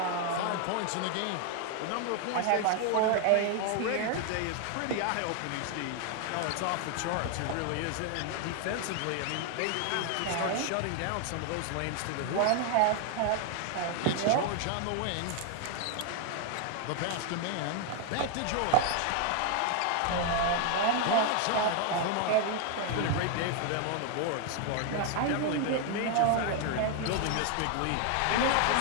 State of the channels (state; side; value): different; both; correlation 0.01